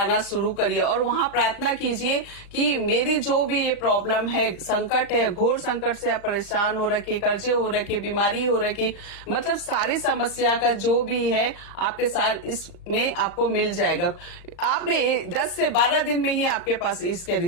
शुरू करिए, और वहां प्रार्थना कीजिए कि मेरी जो भी ये प्रॉब्लम है, संकट है, घोर संकट से आप परेशान हो रखी, कर्जे हो रखे, बीमारी हो रखी, मतलब सारी समस्या का जो भी है आपके साथ इसमें आपको मिल जाएगा। आपने 10 से 12 दिन में ही आपके पास इसके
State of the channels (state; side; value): late; right; 36 ms